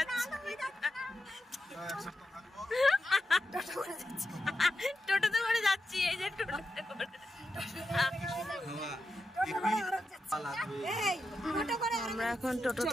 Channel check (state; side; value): normal; both; correlation 0.88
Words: টোটোতে করে যাচ্ছি, এই যে টোটোতে করে। আমরা এখন টোটো